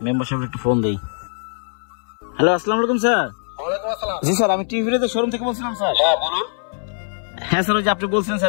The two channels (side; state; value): right; silent; 62 dB below the other